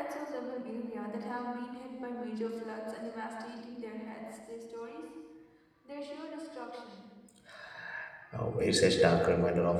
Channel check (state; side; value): identical; both; correlation 1.00